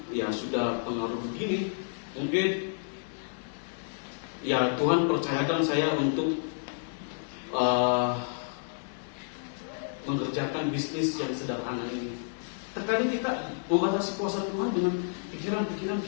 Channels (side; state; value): right; silent; digital silence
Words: ya sudah pengaruh begini, mungkin ya Tuhan percayakan saya untuk mengerjakan bisnis yang sederhana ini. Terkadang kita membatasi kuasa Tuhan dengan pikiran-pikiran